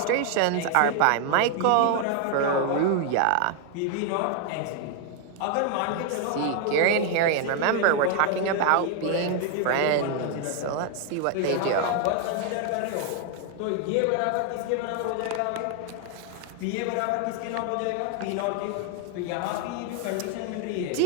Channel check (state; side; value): different; both; correlation 0.00